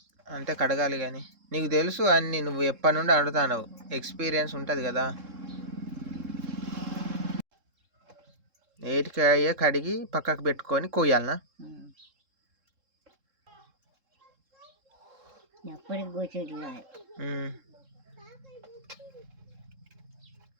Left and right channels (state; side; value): late; left; 3.7 ms